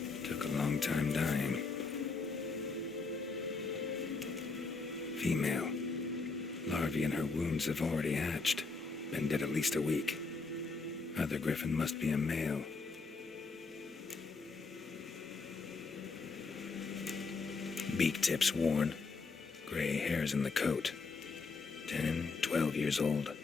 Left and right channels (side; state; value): right; quieter; 4.2 dB